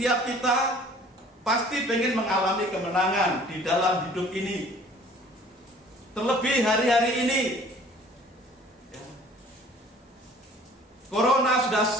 kita pasti pengen mengalami kemenangan di dalam hidup ini. Terlebih hari-hari ini, Corona sudah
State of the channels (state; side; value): normal; both; correlation 0.51